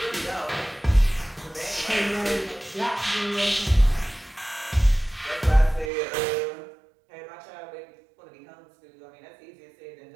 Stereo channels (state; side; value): drops out; left; at 5.9 s